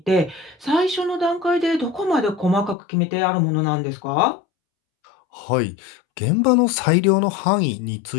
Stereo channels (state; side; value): drops out; right; at 2.8 s